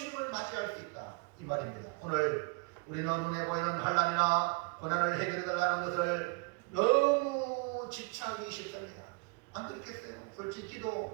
맞이할 수 있다, 이 말입니다. 오늘 우리는 눈에 보이는 환난이나 고난을 해결해달라는 것을 너무 집착하기 쉽습니다. 안 그렇겠어요? 솔직히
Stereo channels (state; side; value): quieter; left; 30.7 dB